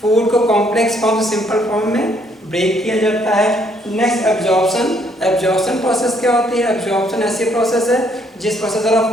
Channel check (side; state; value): both; normal; correlation 0.67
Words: फूड को कॉम्प्लेक्स फॉर्म से सिंपल फॉर्म में ब्रेक किया जाता है। Next absorption. एब्जॉर्प्शन प्रोसेस क्या होती है, एब्जॉर्प्शन ऐसी प्रोसेस है जिस प्रोसेस द्वारा